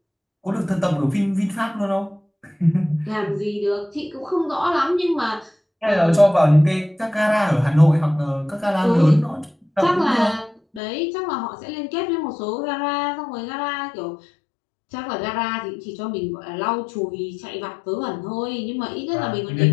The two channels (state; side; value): drops out; right; at 10.8 s